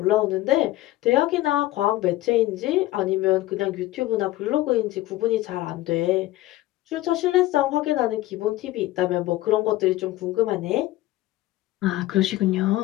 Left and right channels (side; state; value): right; quieter; 16.5 dB